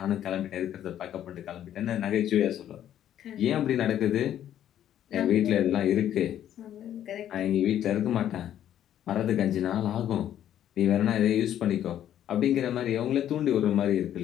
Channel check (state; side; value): quieter; right; 11.0 dB